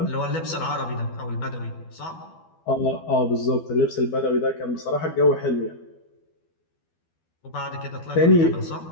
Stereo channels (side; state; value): right; late; 12 ms